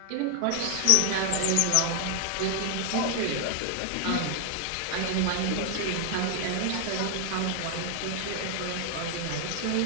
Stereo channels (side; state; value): both; different; correlation 0.00